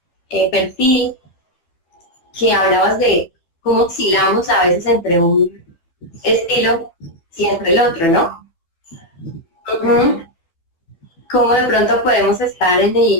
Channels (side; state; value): right; late; 12 ms